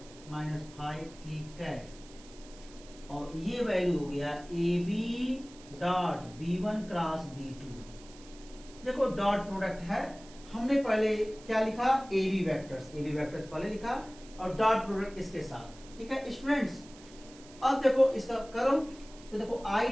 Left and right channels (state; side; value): noise; right; hiss, 21 dB below the sound